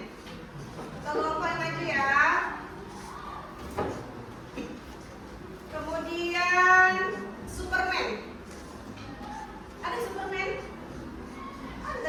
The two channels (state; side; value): identical; both; correlation 1.00